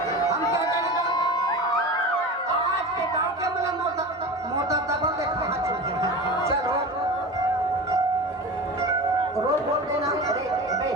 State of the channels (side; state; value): both; normal; correlation 0.30